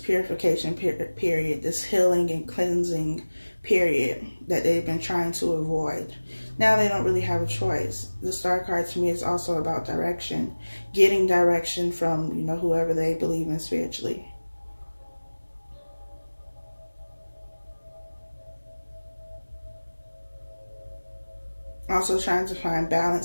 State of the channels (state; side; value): inverted; both; correlation -1.00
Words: period, this healing and cleansing period that they've been trying to avoid. Now they don't really have a choice. The Star card to me is also about direction, getting direction from, you know, whoever they believe in spiritually. Also trying to find